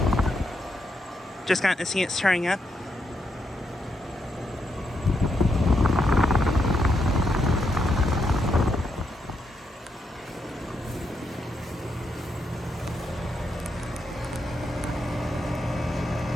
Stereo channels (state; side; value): normal; both; correlation 0.81